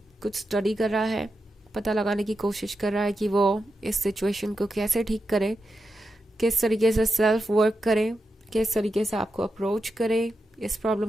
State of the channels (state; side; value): normal; both; correlation 0.88